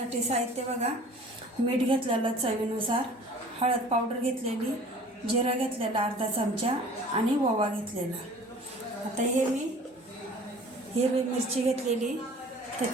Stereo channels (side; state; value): both; normal; correlation 0.47